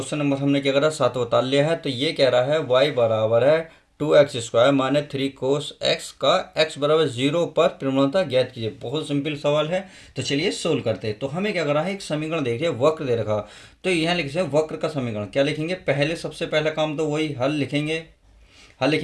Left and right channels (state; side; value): identical; both; correlation 1.00